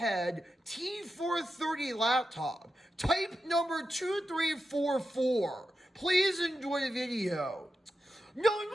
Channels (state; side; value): normal; both; correlation 0.89